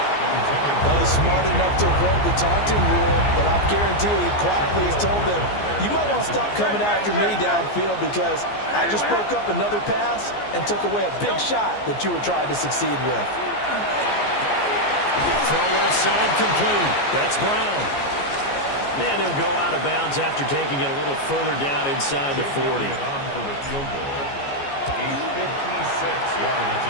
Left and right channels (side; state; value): right; late; 14 ms